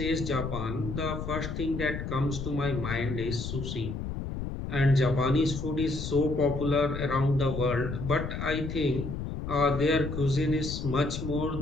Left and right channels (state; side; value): noise; left; rumble, 5 dB below the sound